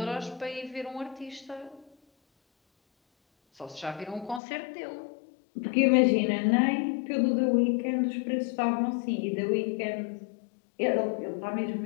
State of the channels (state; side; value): drops out; right; at 4.4 s